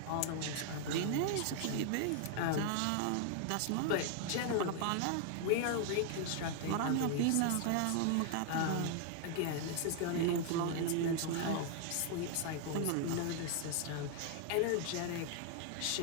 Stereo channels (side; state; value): both; different; correlation 0.00